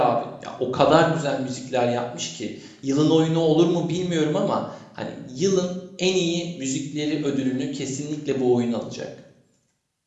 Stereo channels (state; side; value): identical; both; correlation 1.00